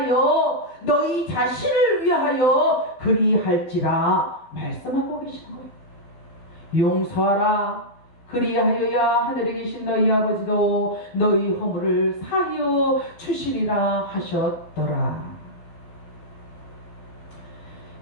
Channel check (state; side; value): late; right; 12 ms